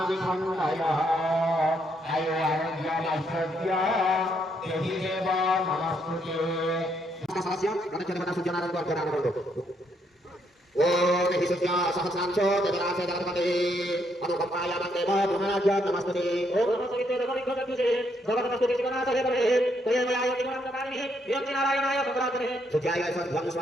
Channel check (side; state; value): both; normal; correlation 0.74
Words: ओम हिसुद्या सहस्रांशो ददरासे दलपते अनुकंपाय मंदेव पुनराज नमस्ते ओम नमस्ते दगनिखदुजे भगवतस्तुति गणासे बरे तयमयाय निगमनकारिणे योगि नारायणाय भगवते सुजाय सद्भं